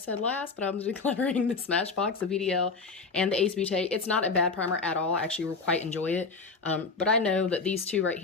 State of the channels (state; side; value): quieter; right; 4.4 dB